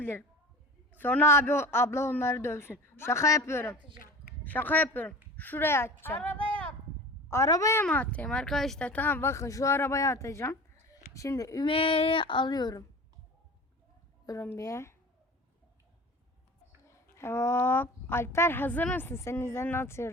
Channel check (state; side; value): normal; both; correlation 0.37